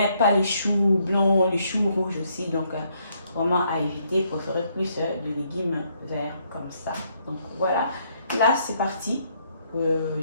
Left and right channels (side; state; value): both; inverted; correlation -0.72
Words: pas les choux blancs, les choux rouges aussi. Donc vraiment à éviter, préférez plus de légumes verts comme ça. Donc voilà, là c'est parti.